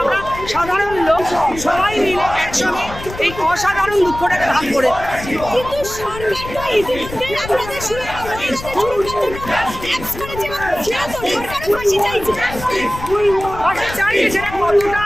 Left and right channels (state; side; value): noise; left; rumble, 12 dB below the sound